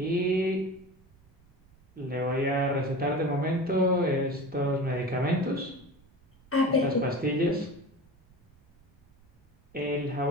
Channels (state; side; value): noise; right; rumble, 30 dB below the sound